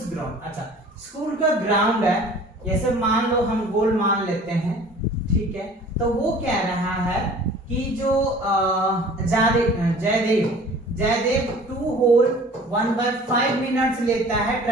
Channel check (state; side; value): normal; both; correlation 0.47